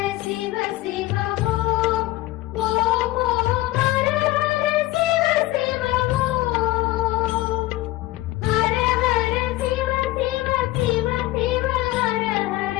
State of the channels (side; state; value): right; quieter; 18.0 dB